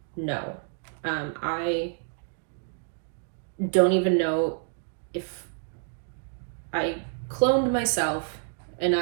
No. I don't even know if I cloned myself And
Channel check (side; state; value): left; silent; 59 dB below the other